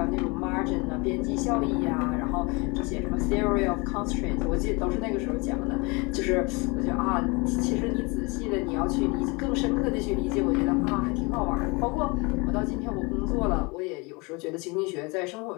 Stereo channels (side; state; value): right; quieter; 27.8 dB